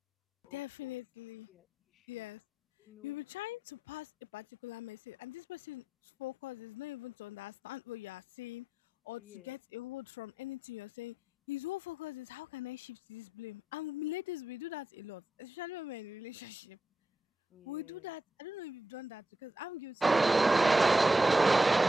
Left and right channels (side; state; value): both; normal; correlation 0.85